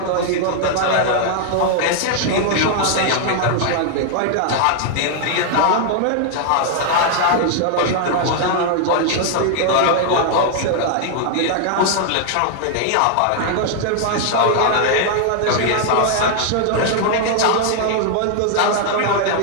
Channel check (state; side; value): different; both; correlation 0.00